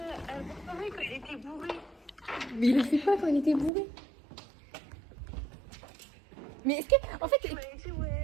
Quand il était bourré. Mais il le fait pas quand il était bourré. Mais est-ce que. En fait. T'es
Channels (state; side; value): drops out; left; at 3.7 s